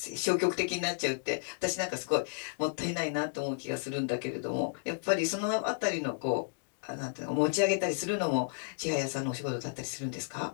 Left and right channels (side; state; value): right; silent; digital silence